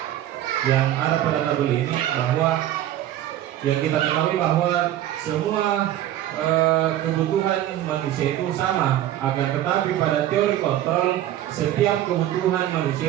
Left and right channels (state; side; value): quieter; left; 12.7 dB